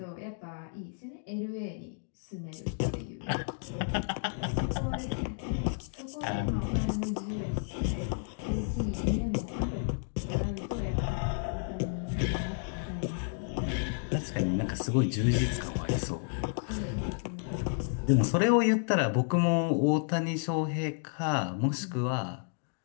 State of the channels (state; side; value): silent; right; digital silence